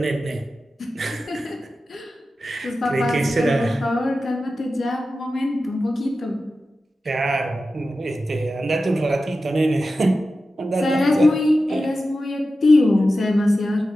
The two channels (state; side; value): normal; both; correlation 0.93